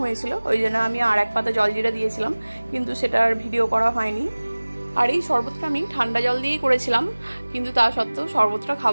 হয়েছিল, ওই জন্য আমি আর 1 পাতা জলজিরা দিয়েছিলাম, কিন্তু সেটার ভিডিও করা হয়নি। আর এই শরবতটা আমি ঠান্ডা জল দিয়েই করেছিলাম, কিন্তু তা সত্ত্বেও শরবতটা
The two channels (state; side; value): inverted; both; correlation -1.00